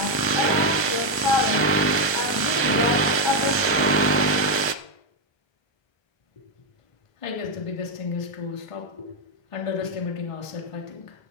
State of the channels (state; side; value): late; right; 1.3 ms